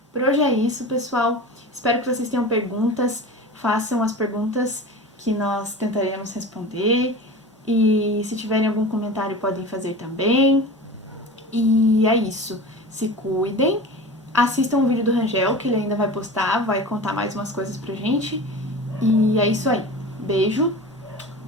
Por hoje é isso, pessoal. Espero que vocês tenham perguntas. Façam as perguntas que nós tentaremos responder. E se tiverem algum comentário, podem fazer também. E é isso. Se cuidem. Assistam o vídeo do Rangel, que ele ainda vai postar. Vai contar mais umas coisas pra gente. E é isso aí. Beijo.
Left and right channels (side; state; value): both; normal; correlation 0.33